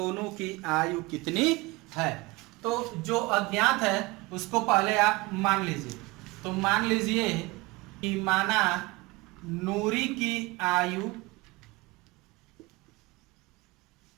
की आयु कितनी है। तो जो अज्ञात है उसको पहले आप मान लीजिए। तो मान लीजिए कि माना नूरी की आयु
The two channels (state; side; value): quieter; left; 22.9 dB